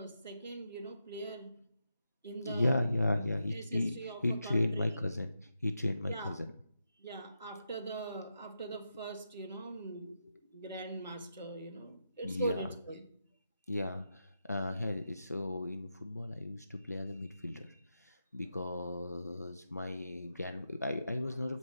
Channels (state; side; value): inverted; both; correlation -0.86